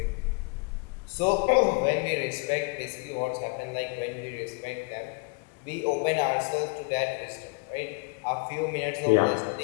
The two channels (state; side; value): quieter; right; 29.1 dB